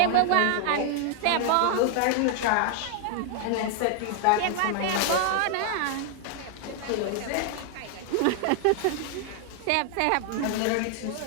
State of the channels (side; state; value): both; different; correlation 0.00